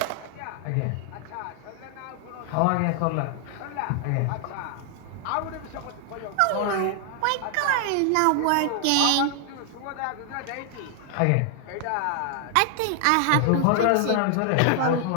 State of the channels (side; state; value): both; different; correlation 0.00